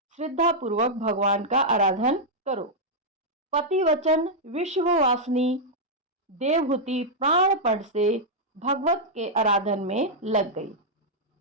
श्रद्धा पूर्वक भगवान का आराधन करो। पति वचन विश्ववासिनी देवहूति प्राणपण से भगवत के आराधन में लग गई।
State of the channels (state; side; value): normal; both; correlation -0.06